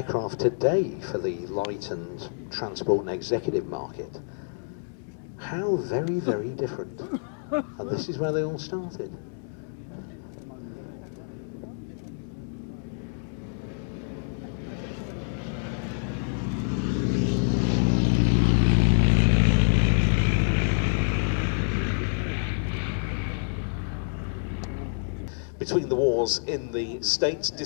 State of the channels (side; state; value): right; silent; 60 dB below the other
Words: today for the light and transport and executive market. How very, very different. And this is where they all started. Between the wars in the States,